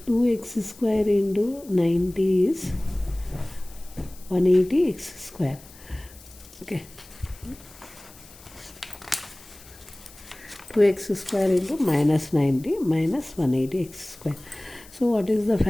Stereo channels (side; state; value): left; noise; hiss, 22 dB below the sound